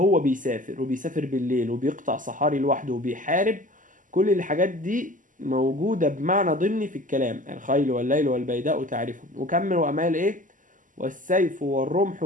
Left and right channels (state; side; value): late; left; 0.38 ms